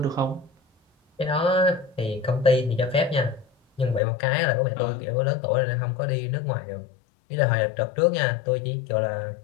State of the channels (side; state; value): right; drops out; at 4.0 s